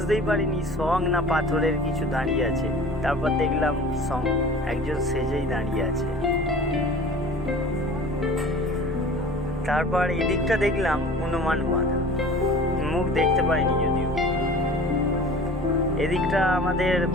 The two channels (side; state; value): both; normal; correlation 0.42